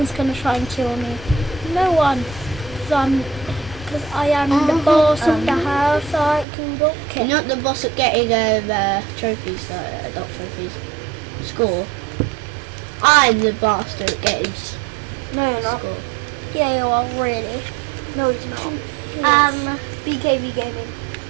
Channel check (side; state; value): left; drops out; at 6.5 s